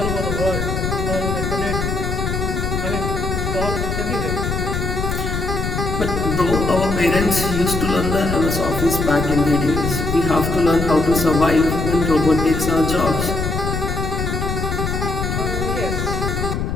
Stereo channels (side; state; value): left; noise; rumble, 2 dB below the sound